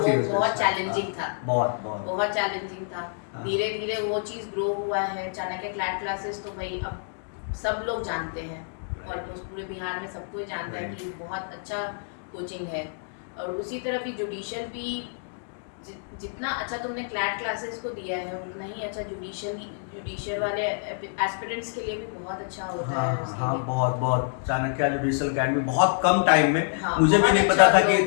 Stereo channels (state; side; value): silent; right; digital silence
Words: वो year से बहुत start, चैलेंजिंग था, बहुत चैलेंजिंग था। हाँ। धीरे धीरे वो चीज़ ग्रो हुआ है। चाणक्य क्लैट क्लासेस तो भाई अब सब लोग जानते हैं, ऑलमोस्ट पूरे बिहार में सबको ही जानता है कि बहुत अच्छा कोचिंग है। और उसी तरह भी जुडिशियल भी जितना अच्छा तुमने क्लैट क्लासेस को दिया है, उतना ही अच्छा जुडिशियल वाले एस्पिरेंट्स के लिए भी बहुत अच्छा होता है उसके हाँ, लिए। बहुत चाणक्य जुडिशियल एकेडमी बहुत कम टाइम में, हाँ, मुझे भी बहुत नहीं अच्छा पता था कि ग्रो